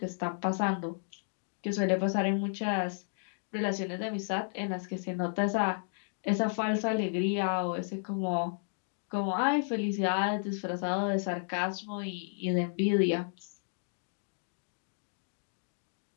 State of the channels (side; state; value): right; silent; digital silence